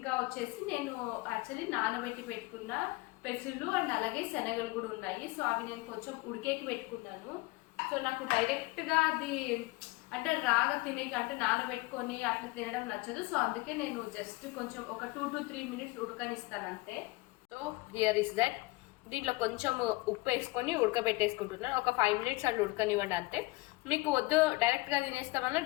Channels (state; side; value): quieter; right; 22.8 dB